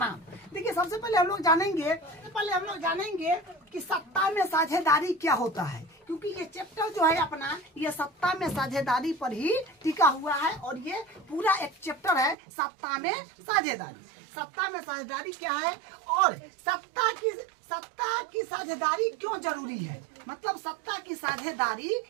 देखिए, सबसे पहले हम लोग जानेंगे कि सत्ता में साझेदारी क्या होता है, क्योंकि ये चैप्टर जो है अपना ये सत्ता में साझेदारी पर ही टिका हुआ है और ये पूरा एक चैप्टर है सत्ता में साझेदारी। सत्ता में साझेदारी क्या है और सत्ता की साझेदारी क्यों जरूरी है, मतलब सत्ता की साझेदारी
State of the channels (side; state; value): left; drops out; at 12.4 s